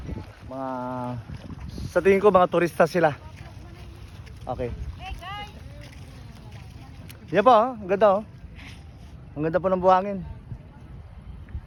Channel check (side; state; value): both; identical; correlation 1.00